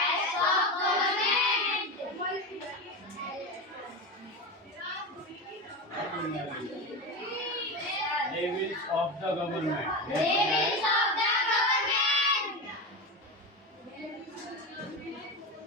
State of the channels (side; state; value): both; normal; correlation 0.20